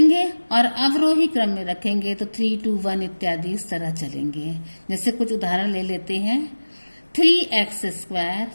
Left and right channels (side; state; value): both; inverted; correlation -1.00